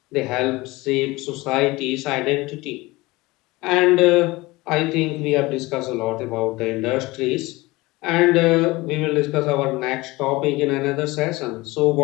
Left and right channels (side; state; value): right; quieter; 21.3 dB